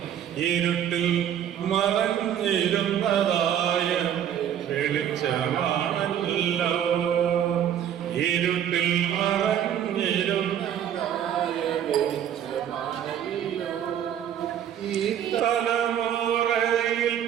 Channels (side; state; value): left; quieter; 9.9 dB